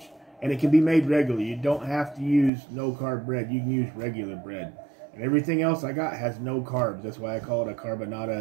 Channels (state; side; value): drops out; left; at 2.5 s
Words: And it can be made regularly. You don't have to use no-carb bread. You can use regular bread. And everything else I got has no carbs. That's why I call it a Carba-Nada